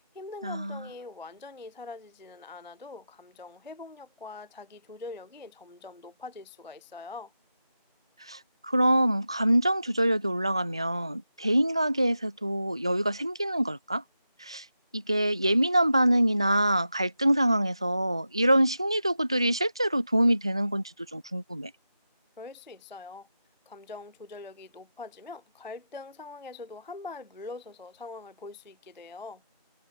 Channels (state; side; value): inverted; both; correlation -0.91